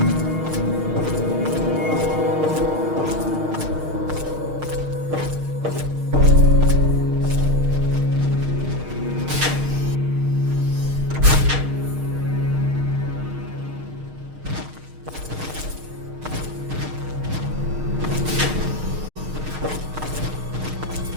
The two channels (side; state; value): left; late; 6.5 ms